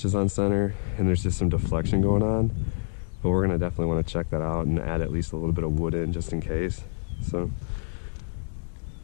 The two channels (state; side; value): silent; right; digital silence